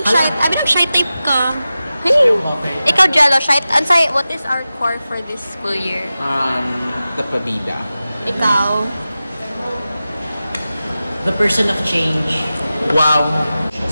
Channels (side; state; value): both; inverted; correlation -0.94